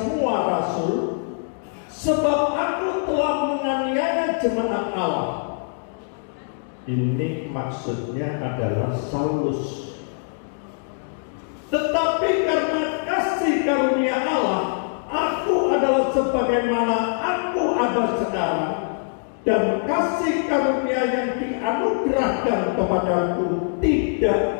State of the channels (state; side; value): silent; right; 63 dB below the other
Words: rasul, sebab aku telah menganiaya jemaat Allah. Ini maksudnya adalah Saulus. Tetapi karena kasih karunia Allah, aku adalah sebagaimana aku ada sekarang, dan kasih karunia yang dianugerahkan kepadaku tidak